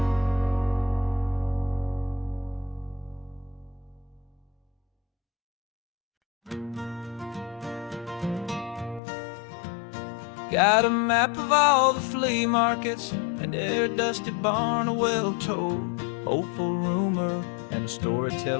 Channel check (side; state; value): right; drops out; at 9.0 s